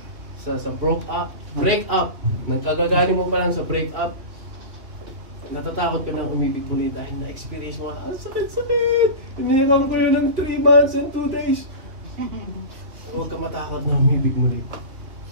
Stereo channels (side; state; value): left; late; 3.2 ms